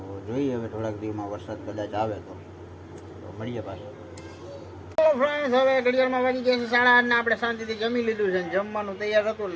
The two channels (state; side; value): identical; both; correlation 1.00